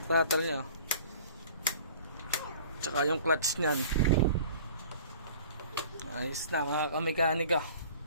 throttle nyo. Tsaka yung clutch nyan. Ayos na mga kamekanika.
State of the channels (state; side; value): inverted; both; correlation -0.46